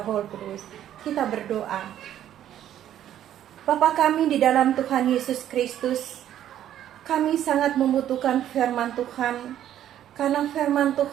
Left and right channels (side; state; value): left; quieter; 11.3 dB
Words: Roh Kudus. Kita berdoa. Bapa kami di dalam Tuhan Yesus Kristus, kami sangat membutuhkan firman Tuhan, karena firman